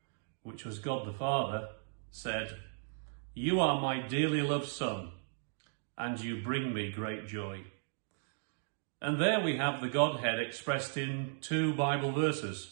which was God the Father, said, "You are my dearly loved Son, and you bring me great joy." And there we have the Godhead expressed in two Bible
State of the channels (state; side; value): silent; left; digital silence